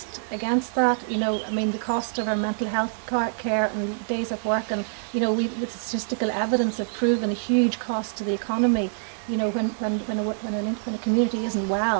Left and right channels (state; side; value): silent; left; digital silence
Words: against that. You know, I mean, the cost of our mental health care and days of work, and you know, with statistical evidence have proven a huge cost to the economy you know, when a community isn't